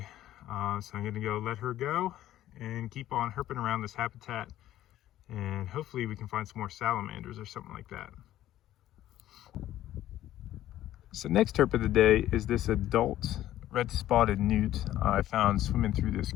So I'm gonna go let her go and keep on herping around this habitat, and hopefully we can find some more salamanders or something like that. So next herp of the day is this adult red spotted newt I found swimming through this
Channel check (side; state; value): right; quieter; 13.3 dB